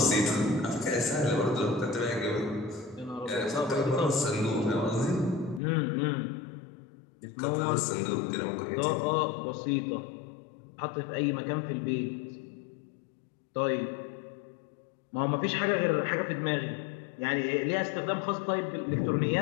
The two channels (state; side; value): drops out; right; at 5.6 s